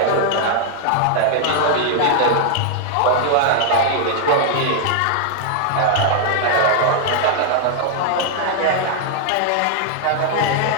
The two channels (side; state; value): both; different; correlation 0.00